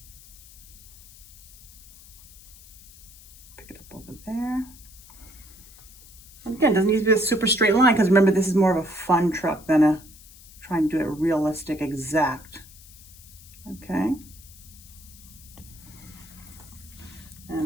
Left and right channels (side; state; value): left; noise; hiss, 21 dB below the sound